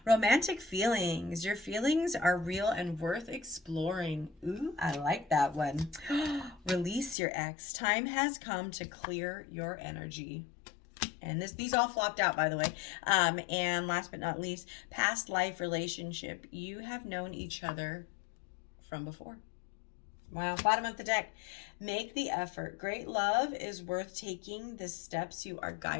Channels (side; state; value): right; drops out; at 7.2 s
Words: Romantic feelings. Your feelings are real and worth exploring. Ooh, I like that one. Release your ex. Time has come to clear your energy. And these all flopped out, by the way. And last but not least, past life relationship. You have known each other from before. Wow, bottom of the deck. Make the effort. Great love is worth taking the steps you are